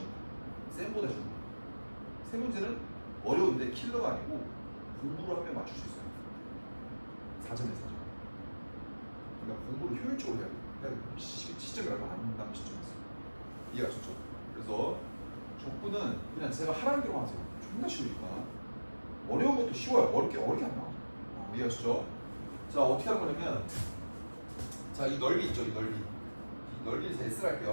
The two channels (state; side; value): inverted; both; correlation -1.00